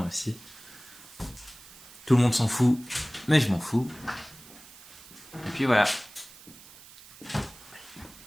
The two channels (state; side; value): noise; right; hiss, 20 dB below the sound